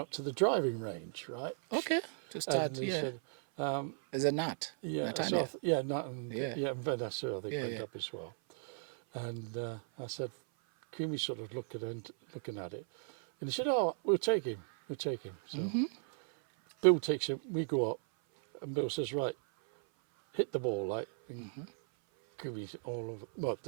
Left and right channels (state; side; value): silent; left; 54 dB below the other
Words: up to the driving range, right? Okay. To start, And he said, There's a nut. yeah, Nut so idea. Nut and and Vanessa, I think, went yeah. up as well. And I said, Kumi sort of looking at it, and he said, "Oh, we'll take him. So Bill takes him. We go up, and Bill says, "Right, hit the ball, like." And Kumi's all over. Well,